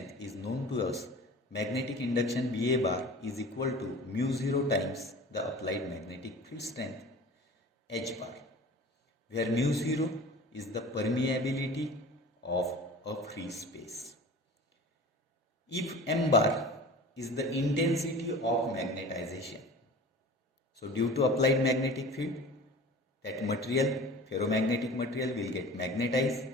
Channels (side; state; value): both; normal; correlation 0.40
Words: is known to us. Magnetic induction BA bar is equal to mu 0 times the applied magnetic field strength H bar, where mu 0 is the permeability of a free space. If M bar is the intensity of magnetization, so due to applied magnetic field, that material, ferromagnetic material, will get magnetized,